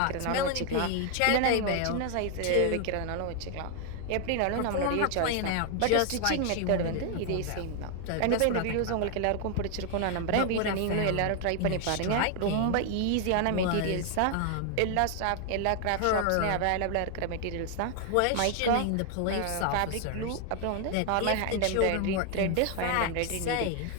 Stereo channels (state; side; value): different; both; correlation 0.00